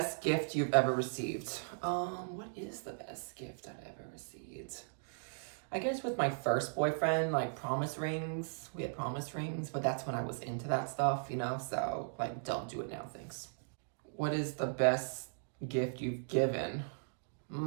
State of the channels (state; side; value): silent; left; digital silence